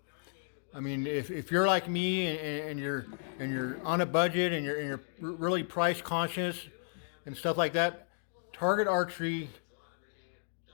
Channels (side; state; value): right; silent; digital silence